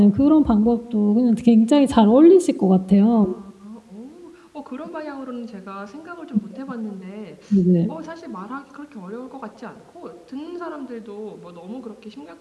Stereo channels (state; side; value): identical; both; correlation 1.00